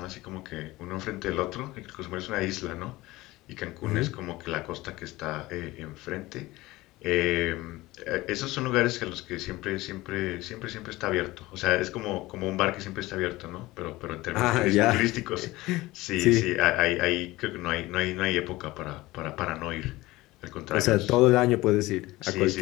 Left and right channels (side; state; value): right; quieter; 19.3 dB